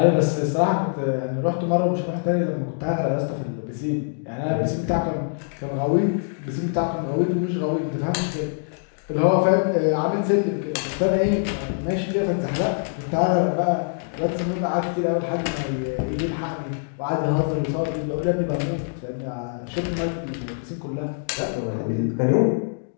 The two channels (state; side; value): silent; right; digital silence